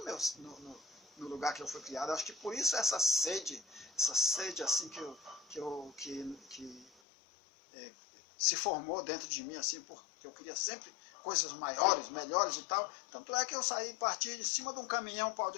no lugar que eu fui criado. Acho que por isso essa sede assim que se formou dentro de mim, assim, porque eu queria sempre coisas maiores, melhores e tal. Tanto é que eu parti de cima de um caminhão, um pau de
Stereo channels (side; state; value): right; drops out; at 6.9 s